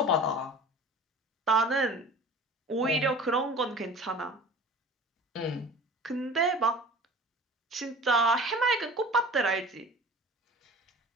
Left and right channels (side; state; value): both; normal; correlation 0.41